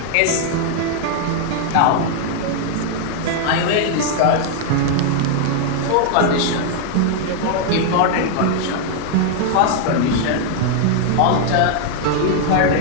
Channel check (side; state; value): both; different; correlation -0.01